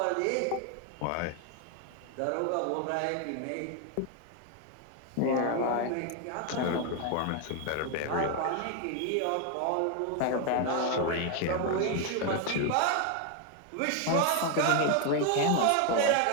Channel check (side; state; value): both; different; correlation 0.01